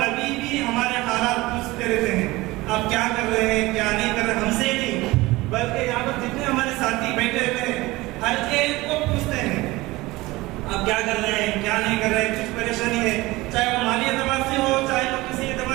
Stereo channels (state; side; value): quieter; left; 20.2 dB